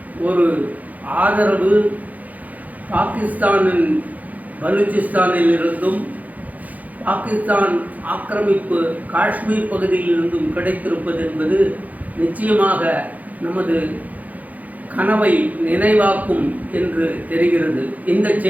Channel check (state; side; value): late; left; 0.078 ms